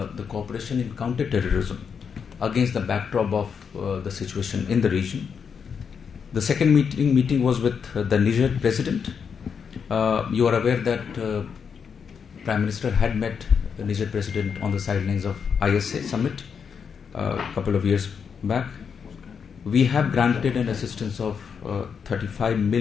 cooperation in counter-terrorism against the backdrop of the situation in the region. The second meeting was with the Niger president. You are aware that Prime Minister had met the Niger president on the sidelines of ISA Summit a couple of years back. We have granted an assistance of $35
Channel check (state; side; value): quieter; right; 6.6 dB